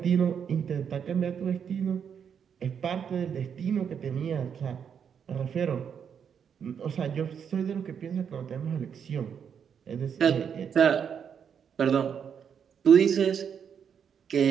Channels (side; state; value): left; quieter; 7.5 dB